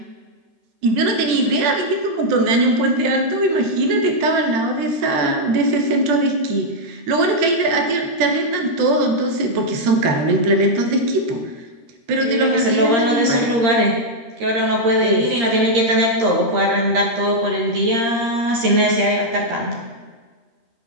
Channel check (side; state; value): left; late; 13 ms